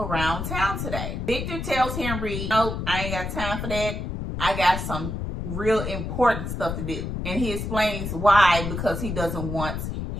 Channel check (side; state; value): left; noise; rumble, 4 dB below the sound